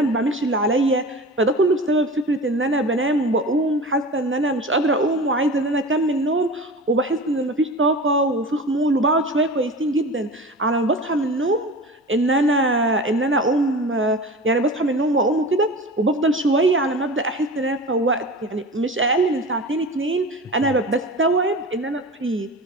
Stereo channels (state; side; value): normal; both; correlation 0.33